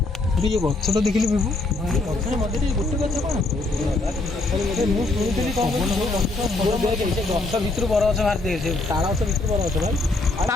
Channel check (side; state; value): right; quieter; 3.1 dB